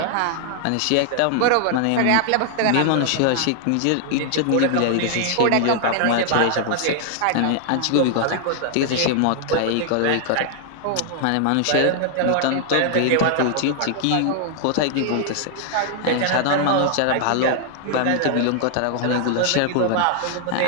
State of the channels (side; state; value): both; different; correlation 0.00